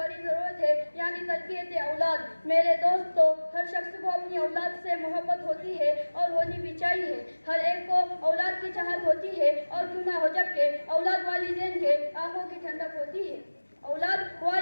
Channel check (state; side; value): inverted; both; correlation -1.00